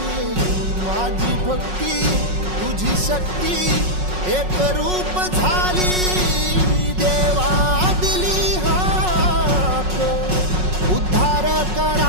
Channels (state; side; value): late; left; 5.4 ms